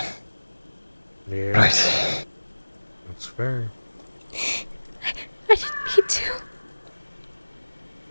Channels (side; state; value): both; inverted; correlation -1.00